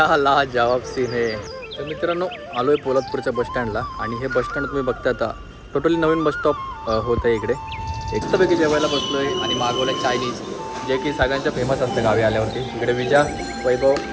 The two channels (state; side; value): identical; both; correlation 1.00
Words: लाजवाब सीन आहे. तर मित्रांनो आलोय पोलादपूरच्या बसस्टँडला. आणि हे बसस्टँड तुम्ही बघता आता टोटली नवीन बसस्टॉप होत आहे इकडे. एकटंपैकी जेवायला बसलोय आणि मागवलं चायनीज, जे की सगळ्यांच्या फेमस असतं गावी आल्यावरती. इकडे विजा, वैभव,